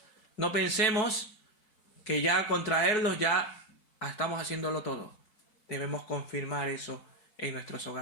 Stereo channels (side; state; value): right; late; 4.7 ms